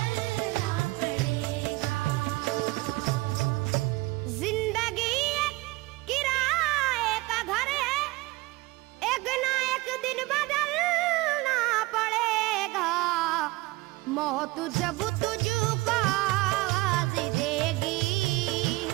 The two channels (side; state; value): left; quieter; 21.2 dB